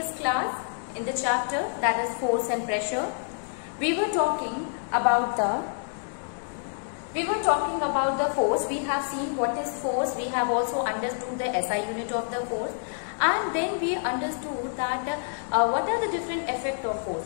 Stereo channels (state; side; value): silent; right; digital silence